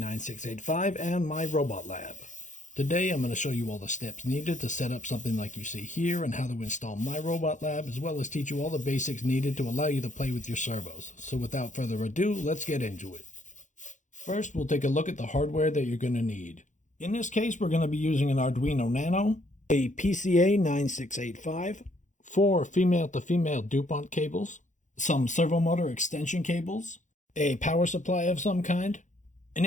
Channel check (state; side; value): late; right; 0.36 ms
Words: and MYROBOTLAB. Today I'm going to show you all the steps needed to set up something like you see here and how to install MYROBOTLAB, as well as teach you all the basics needed to allow you to play with your servos. So without further ado, let's get into it. First, we'll take a look at the hardware that you're going to need. In this case, we're going to be using an Arduino Nano, a PCA9685, 4 female-to-female DuPont cables, some servo motor extension cables, a power supply of some kind. An